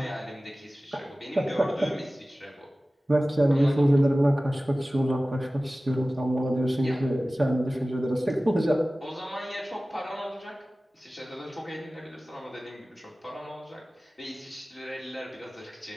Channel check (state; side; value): normal; both; correlation 0.97